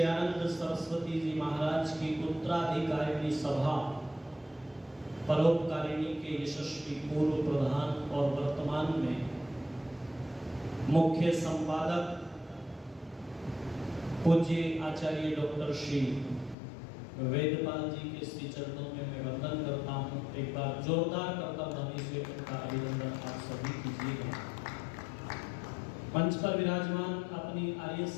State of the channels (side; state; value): right; drops out; at 16.6 s